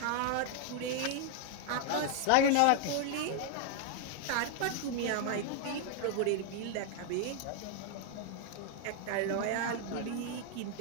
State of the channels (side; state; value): both; different; correlation 0.00